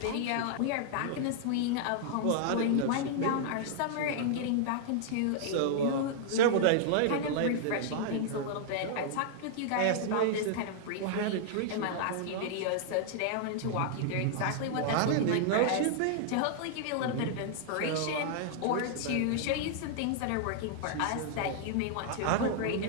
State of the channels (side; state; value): both; different; correlation -0.01